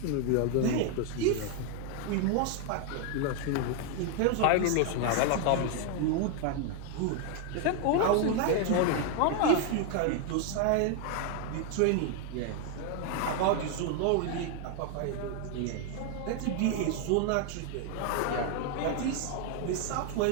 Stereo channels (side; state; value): both; different; correlation 0.00